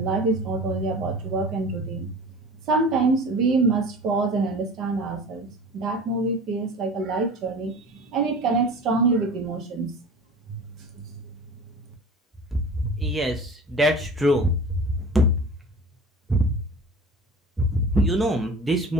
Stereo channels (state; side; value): normal; both; correlation 0.38